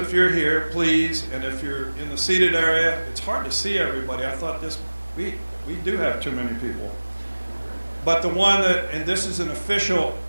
you're here, please, and if you're in the seated area. It's hard to see everybody. I thought we do have too many people. But the one that, and this is an official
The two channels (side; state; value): both; inverted; correlation -1.00